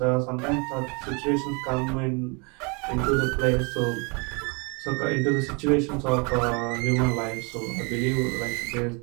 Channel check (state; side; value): quieter; left; 32.4 dB